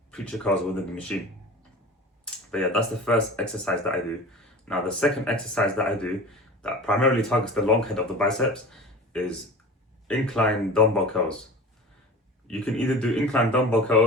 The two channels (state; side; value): normal; both; correlation 0.36